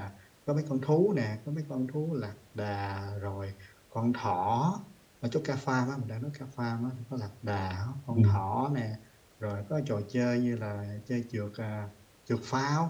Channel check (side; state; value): both; identical; correlation 1.00